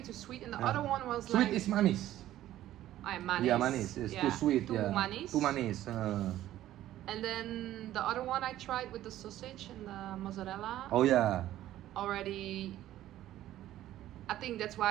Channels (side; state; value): left; quieter; 13.5 dB